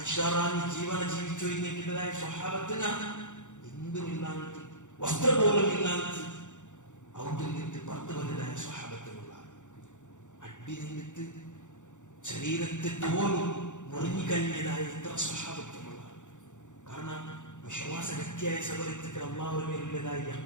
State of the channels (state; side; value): late; right; 0.85 ms